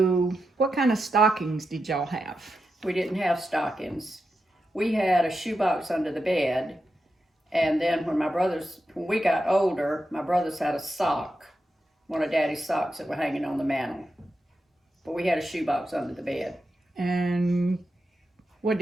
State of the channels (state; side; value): normal; both; correlation 0.88